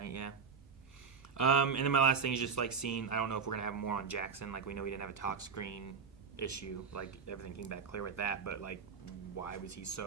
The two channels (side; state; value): left; quieter; 5.9 dB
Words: Yeah. And then my last thing is just like seeing. I don't know if we're gonna have more on Jackson. Like we know we didn't have a talk screen issue. Like everything came back clear with that, but like why was he